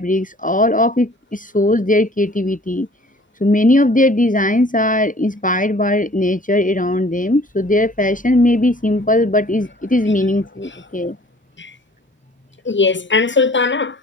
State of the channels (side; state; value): both; normal; correlation 0.52